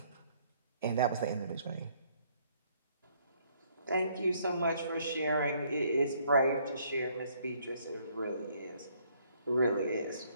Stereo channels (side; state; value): both; inverted; correlation -0.65